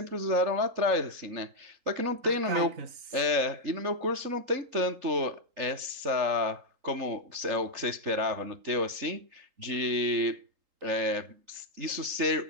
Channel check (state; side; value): late; left; 3.4 ms